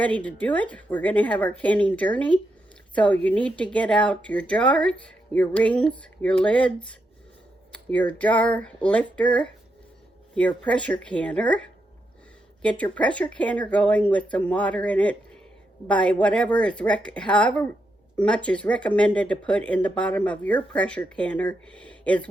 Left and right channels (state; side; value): normal; both; correlation 0.83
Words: to do it. We're going to have our canning journey. So you need to get out your jars, your rings, your lids, your jar lifter, your pressure canner. Get your pressure canner going with some water in it by whatever is however much is recommended to put in the bottom of your pressure canner is